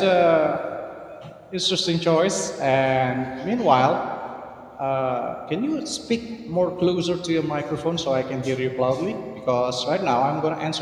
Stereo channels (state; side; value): identical; both; correlation 1.00